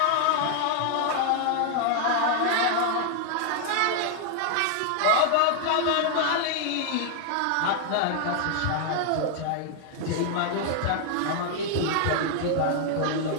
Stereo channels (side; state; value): both; different; correlation 0.00